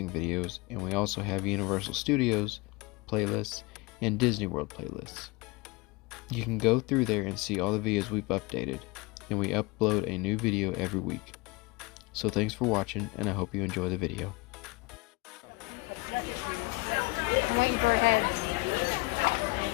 videos, and we also have Universal Studios playlists and Disney World playlists. You can go through there and see all the videos we've updated, and we upload a new video every week. So thanks for watching, and I hope you enjoy the video. I'm waiting for a head.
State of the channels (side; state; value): right; quieter; 24.5 dB